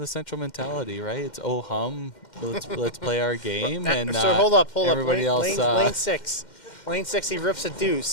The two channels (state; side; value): late; right; 2.1 ms